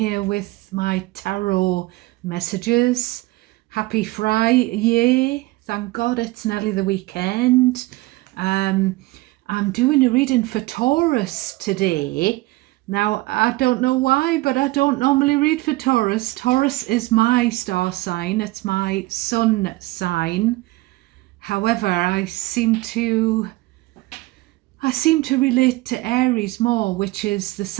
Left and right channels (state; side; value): quieter; left; 20.4 dB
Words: with my tarot messages. Happy Friday. Thank God it's nearly the weekend. I'm doing a reading for Taurus today. Now, I don't know why, but I don't normally read for Taurus. Taurus is my star sign, it's my sun sign. However, I seem to relate to Aries more, which is the